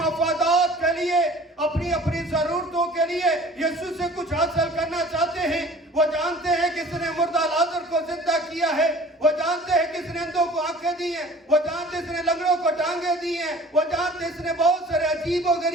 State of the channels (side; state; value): both; normal; correlation 0.47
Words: के लिए, अपनी अपनी जरूरतों के लिए यीशु से कुछ हासिल करना चाहते हैं। वो जानते हैं किसने मुर्दा लाजर को जिंदा किया है, वो जानते हैं किसने अंधों को आंखें दी हैं, वो जानते इसने लंगड़ों को टांगे दी हैं, वो जानते इसने बहुत सारे अजीब और